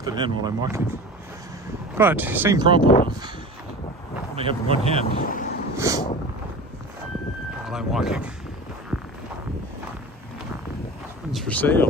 in while I'm walking. But same problem of only having one hand while I'm walking. One's for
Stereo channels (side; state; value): both; normal; correlation 0.35